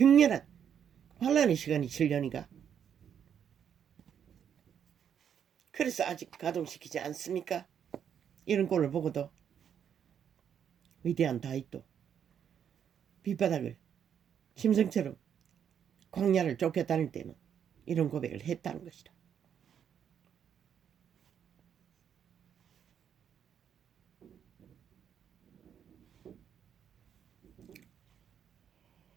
환란의 시간이 7년이가. 그래서 아직 가동시키지 않습니까? 이런 꼴을 보고도 위대한 다윗도 밑바닥을 심성처럼 광야를 쫓겨다닐 때는 이런 고백을 했다는 것이다.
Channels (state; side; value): quieter; left; 8.5 dB